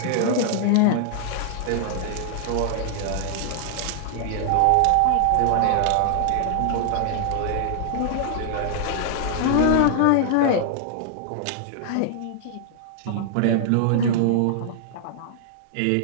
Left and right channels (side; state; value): both; different; correlation -0.01